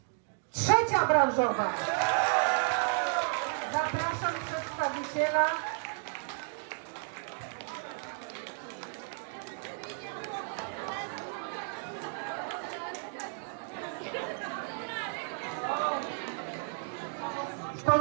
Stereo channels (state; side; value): silent; left; 56 dB below the other